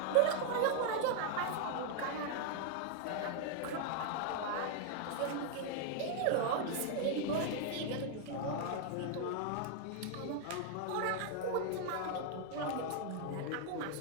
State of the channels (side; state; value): both; different; correlation 0.00